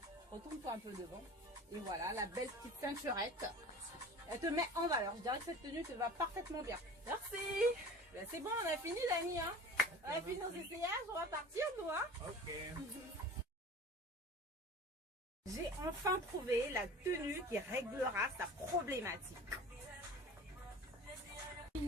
Retourne-toi un peu devant. Et voilà, la belle petite ceinturette. Elle te met en valeur. Je dirais que cette tenue te va parfaitement bien. Merci. Ben, c'est bon, on a fini, Dani. Hein. On a fini nos essayages, on va partir, nous. Hein. Ok. J'ai enfin trouvé la tenue qui réglera sa problématique.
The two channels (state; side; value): normal; both; correlation 0.39